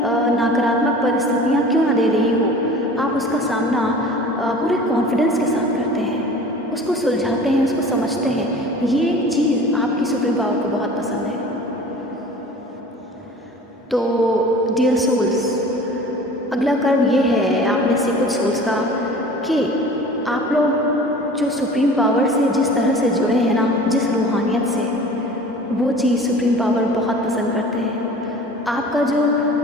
नकारात्मक परिस्थितियाँ क्यों ना दे रही हो, आप उसका सामना पूरे कॉन्फिडेंस के साथ करते हैं, उसको सुलझाते हैं, उसको समझते हैं। ये चीज़ आपकी सुप्रीम पावर को बहुत पसंद है। तो डियर सोल्स, अगला कर्म ये है आप में से कुछ सोल्स का कि आप लोग जो सुप्रीम पावर से जिस तरह से जुड़े हैं ना, जिस रूहानियत से, वो चीज़ सुप्रीम पावर बहुत पसंद करते हैं। आपका जो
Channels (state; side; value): normal; both; correlation 0.42